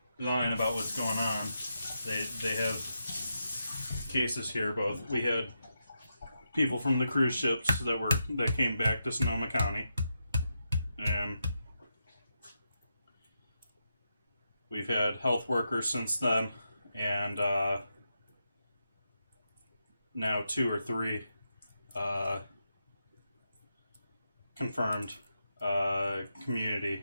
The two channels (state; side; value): inverted; both; correlation -0.85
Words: lying about what's going on. They have cases here. Both we had people from the cruise ships that came back to Sonoma County, and we've had health workers since then, and now 2 or 3 confirmed